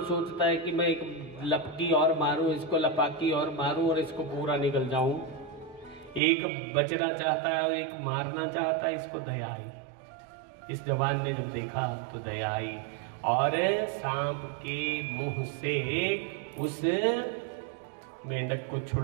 सोचता है कि मैं एक लपकी और मारूं, इसको लपाकी और मारूं और इसको पूरा निकल जाऊं। एक बचना चाहता है, एक मारना चाहता है, इसको दया आई। इस जवान ने जब देखा तो दया आई और सांप के मुंह से उस मेंढक को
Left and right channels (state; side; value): drops out; left; at 6.2 s